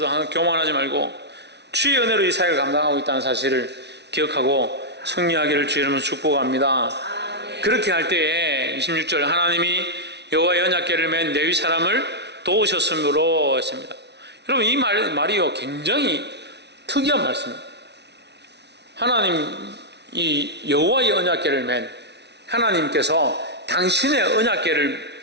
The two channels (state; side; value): late; left; 0.50 ms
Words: 항상 교만하지 말고 주의 은혜로 이 사역을 감당하고 있다는 사실을 기억하고 승리하기를 주의 이름으로 축복합니다. 그렇게 할 때에 26절 하나님이 여호와의 언약궤를 맨 레위 사람을 도우셨으므로 했습니다. 여러분 이 말이요 굉장히 특이한 말씀입니다. 하나님 이 여호와의 언약궤를 맨 하나님께서 당신의